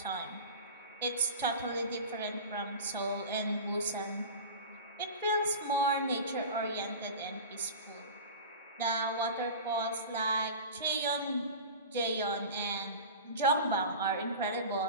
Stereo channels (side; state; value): both; inverted; correlation -0.32